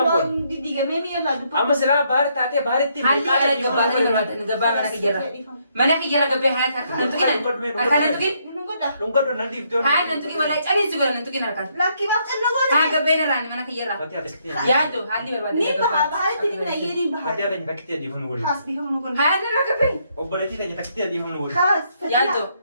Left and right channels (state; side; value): inverted; both; correlation -0.73